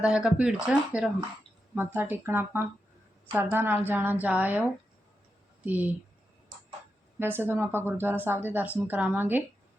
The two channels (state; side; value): normal; both; correlation 0.87